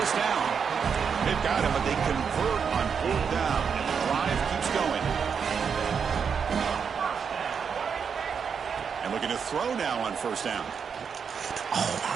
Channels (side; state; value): left; quieter; 6.5 dB